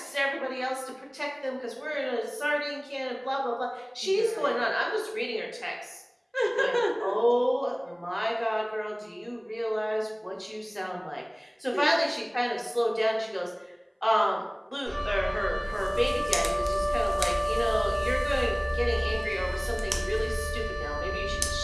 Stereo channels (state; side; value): identical; both; correlation 1.00